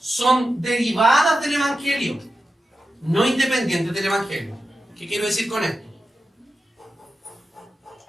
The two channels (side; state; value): both; normal; correlation 0.91